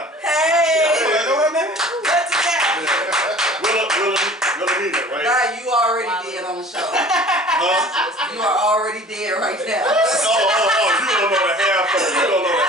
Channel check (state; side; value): normal; both; correlation 0.45